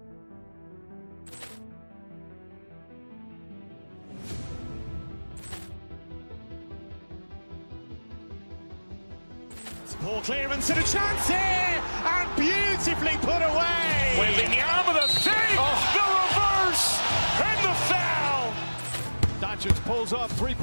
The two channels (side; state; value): both; inverted; correlation -1.00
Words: Ball clearance and a chance here, and beautifully put away. Wembanyama with a save, the reverse, and the foul. Doncic pulls up,